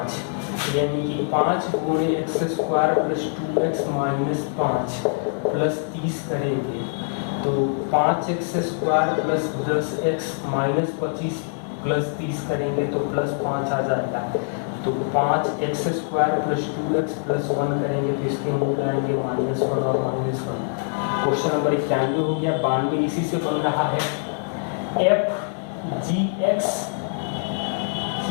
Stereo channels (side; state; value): right; silent; digital silence